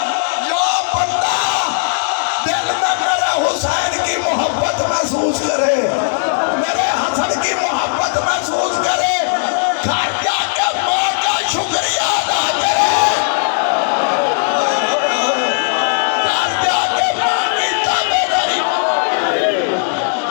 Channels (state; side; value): silent; right; digital silence